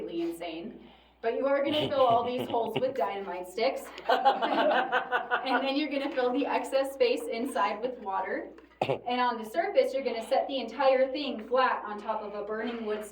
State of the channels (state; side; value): identical; both; correlation 1.00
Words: insane. But you are gonna fill all these holes with dynamite sticks. And then you're gonna fill the excess space inside with water. And on the surface, you're gonna set the entire thing flat on top of a burning wood